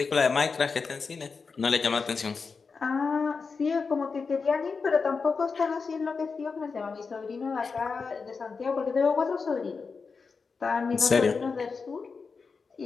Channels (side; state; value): right; quieter; 4.9 dB